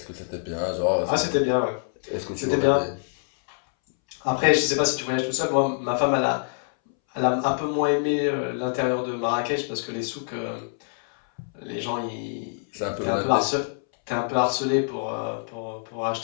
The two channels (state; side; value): silent; right; 61 dB below the other